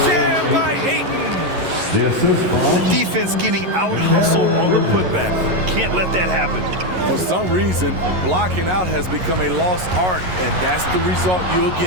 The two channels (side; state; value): left; late; 11 ms